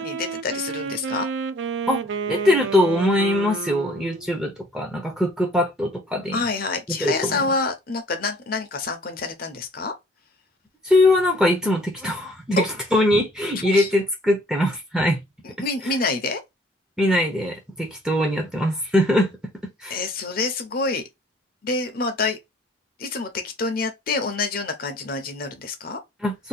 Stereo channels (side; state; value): both; normal; correlation 0.56